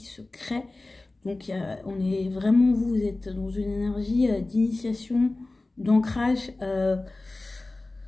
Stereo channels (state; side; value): quieter; right; 3.0 dB